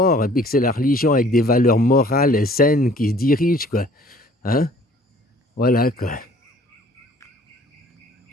et puis que c'est la religion avec des valeurs morales et saines qui se dirige, quoi. Hein? Voilà, quoi.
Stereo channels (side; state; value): both; normal; correlation 0.54